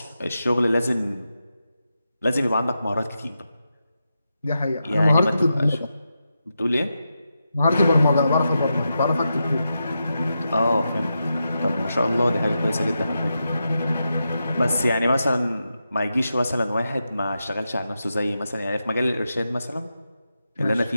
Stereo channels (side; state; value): both; inverted; correlation -0.88